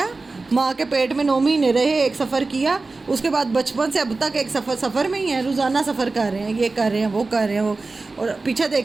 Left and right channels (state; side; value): quieter; left; 3.6 dB